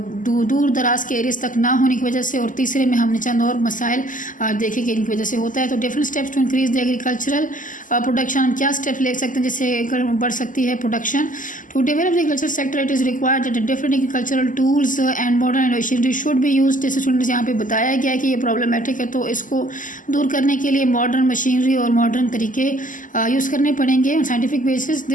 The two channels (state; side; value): late; right; 0.38 ms